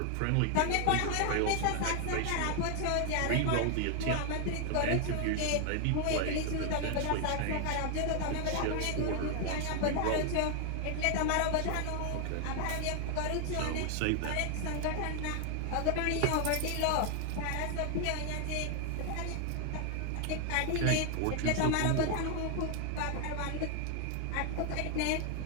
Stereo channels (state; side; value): different; both; correlation 0.00